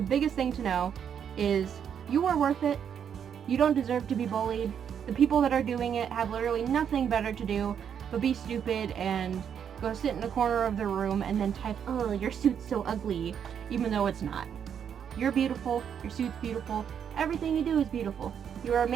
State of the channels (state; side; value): quieter; left; 8.2 dB